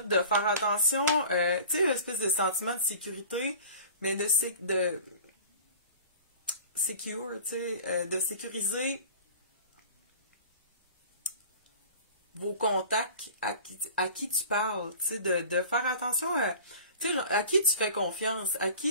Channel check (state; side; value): inverted; both; correlation -0.41